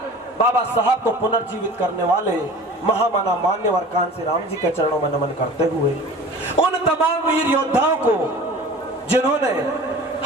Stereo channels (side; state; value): both; normal; correlation 0.41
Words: बाबा साहब को पुनर्जीवित करने वाले महामाना मान्यवर कांसी राम जी के चरणों में नमन करते हुए, उन तमाम वीर योद्धाओं को जिन्होंने